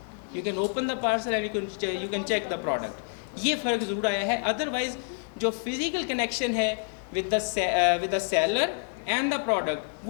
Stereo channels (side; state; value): right; silent; 59 dB below the other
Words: you can open the parcel and you can check the product. یہ فرق ضرور آیا ہے. ادروائز جو فزیکل کنیکشن ہے with the seller and the product.